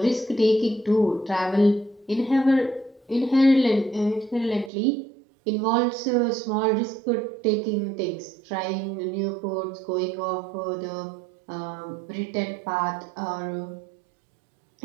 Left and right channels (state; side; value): drops out; left; at 4.7 s